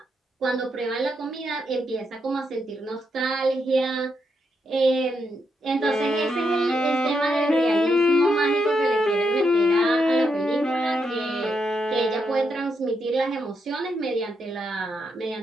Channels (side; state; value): both; normal; correlation 0.81